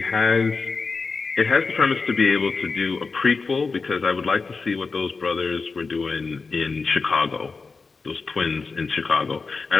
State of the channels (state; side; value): quieter; right; 4.4 dB